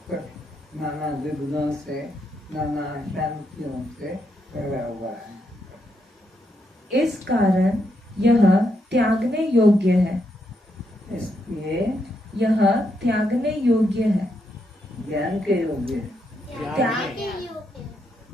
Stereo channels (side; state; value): both; normal; correlation 0.80